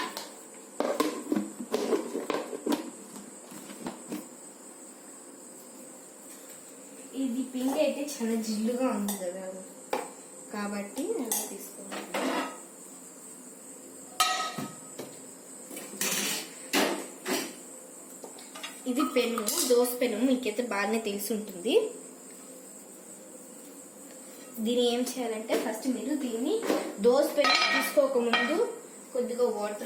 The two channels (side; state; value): both; identical; correlation 1.00